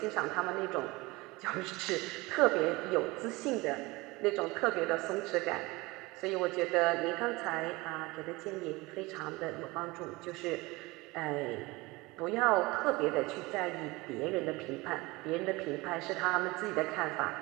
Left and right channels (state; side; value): quieter; left; 22.7 dB